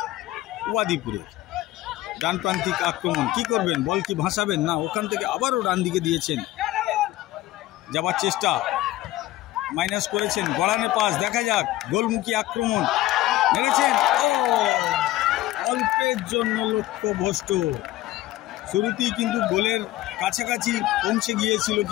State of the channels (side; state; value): right; quieter; 16.0 dB